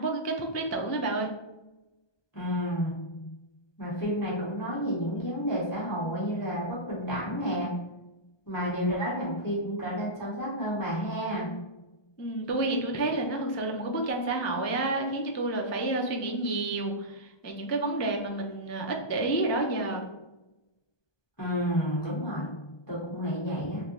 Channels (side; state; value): right; late; 1.2 ms